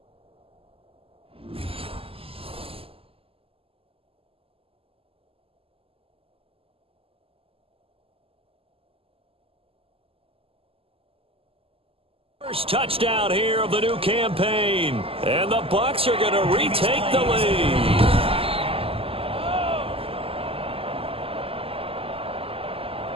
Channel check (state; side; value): late; left; 0.27 ms